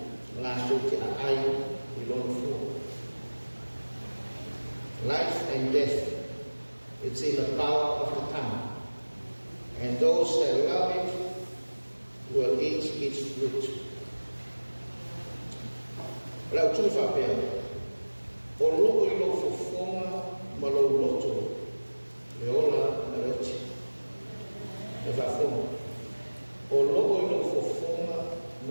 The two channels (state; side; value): inverted; both; correlation -1.00